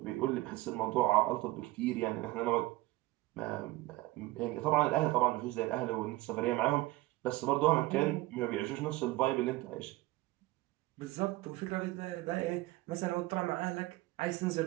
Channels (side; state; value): left; quieter; 18.9 dB